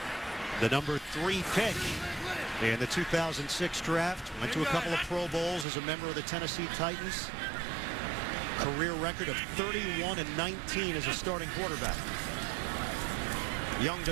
The number 3 pick in the 2006 draft. Went to a couple of Pro Bowls as a member of the Tennessee Titans. career record of 31-19 as a starting quarterback. Young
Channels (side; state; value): left; drops out; at 5.7 s